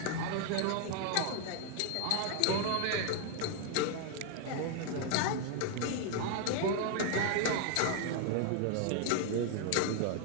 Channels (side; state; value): both; different; correlation 0.00